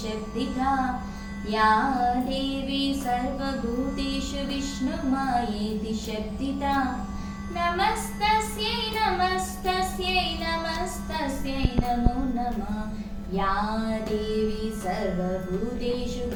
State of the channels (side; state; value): both; identical; correlation 1.00